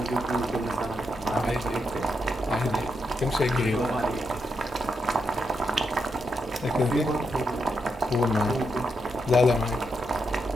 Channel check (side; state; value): both; normal; correlation 0.82